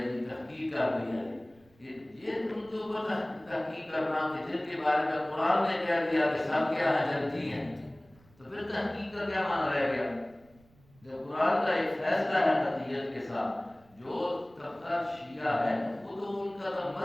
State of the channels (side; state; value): right; noise; rumble, 29 dB below the sound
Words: تحقیق کر دی ہے، یہ تم کے اوپر تحقیق کرنا کہ جن کے بارے میں قرآن نے کہہ دیا کہ سب کیا ہے جنتی ہیں، تو پھر تحقیق کا کیا معنی رہ گیا؟ جب قرآن کا ایک فیصلہ ہے قطعیت کے ساتھ، جو طبقہ شیعہ ہے وہ تو ان کا تو